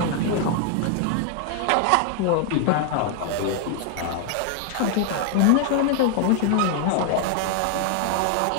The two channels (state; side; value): different; both; correlation 0.00